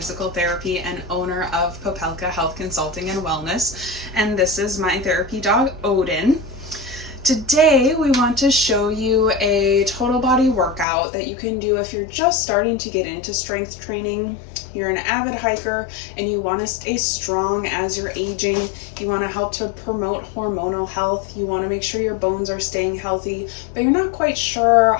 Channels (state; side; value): drops out; right; at 10.9 s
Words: therapy and owner of Popelka Health Consulting and Wellness, and this is my therapy dog, Odin. Today, we want to show you a total body workout that you can do if you're just starting to get into strength training. You're an avid hiker and you want to stay strong as you're aging. You want to help to promote hormonal health. You want to make sure your bones are staying healthy, but you're not quite sure